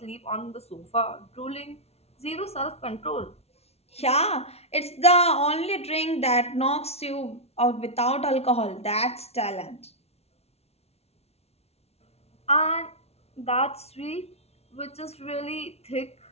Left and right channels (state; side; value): late; right; 0.30 ms